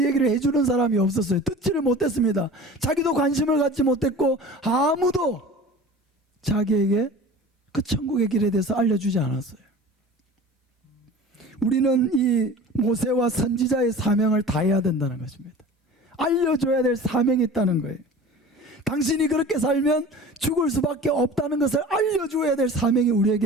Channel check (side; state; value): both; normal; correlation 0.40